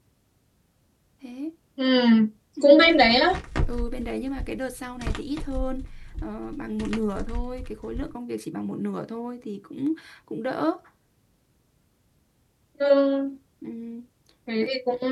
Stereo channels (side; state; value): both; identical; correlation 1.00